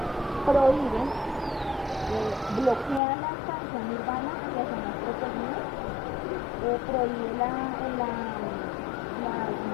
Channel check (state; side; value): drops out; right; at 3.0 s